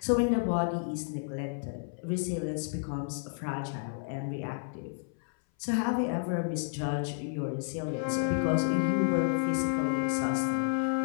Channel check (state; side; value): silent; right; 57 dB below the other